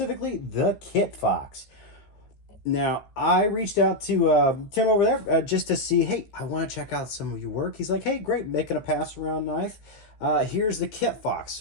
the Kitfox. Now, I reached out to Tim over there just to see, hey, I want to check out some of your work. He's like, hey, great, making a pass around knife. Here's the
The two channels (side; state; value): right; late; 14 ms